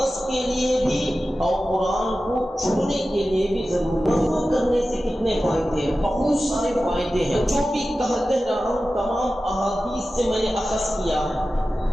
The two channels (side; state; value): both; normal; correlation 0.94